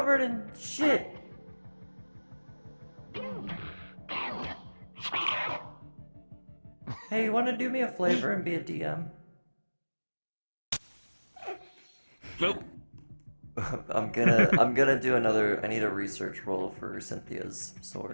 in shit? Hey, you want to do me a favor and be a DM? Nope. I'm gonna do another. I need a research roll for Cynthia's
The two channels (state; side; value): inverted; both; correlation -1.00